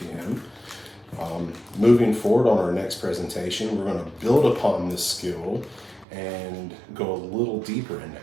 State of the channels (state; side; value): drops out; left; at 6.1 s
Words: Moving forward on our next presentation, we're going to build upon this skill and go a little deeper into